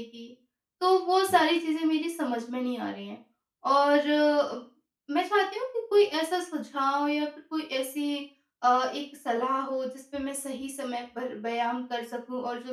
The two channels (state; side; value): identical; both; correlation 1.00